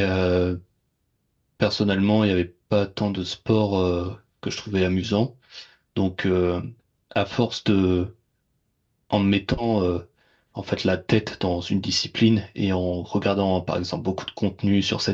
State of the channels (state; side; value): identical; both; correlation 1.00